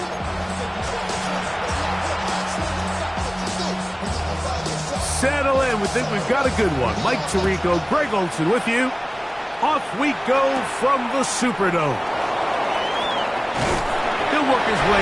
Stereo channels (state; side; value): identical; both; correlation 1.00